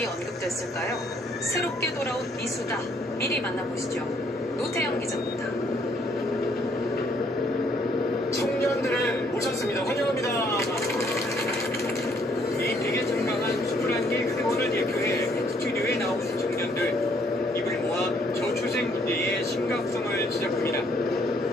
언급됐을까요? 새롭게 돌아온 미수다. 미리 만나보시죠. 노태영 기자입니다. 청년들을 모셨습니다. 환영합니다. 에이펙에 참가한 21개 회원을 대표해 스튜디오에 나온 청년들. 입을 모아 저출생 문제의 심각성을 지적합니다.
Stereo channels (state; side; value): normal; both; correlation 0.66